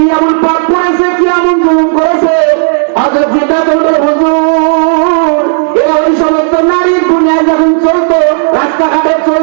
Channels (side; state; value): left; silent; digital silence